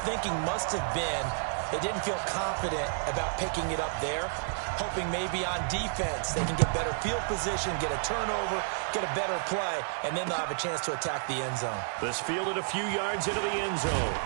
thinking must have been they didn't feel confident about picking it up there, hoping maybe on defense they can get better field position, get a turnover, get a better play, and then they'll have a chance to attack the end zone. This fielded a few yards into the end zone.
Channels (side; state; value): left; silent; 57 dB below the other